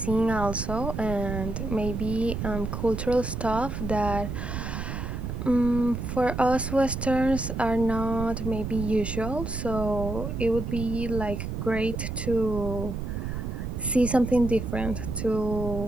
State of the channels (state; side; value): noise; right; rumble, 4 dB below the sound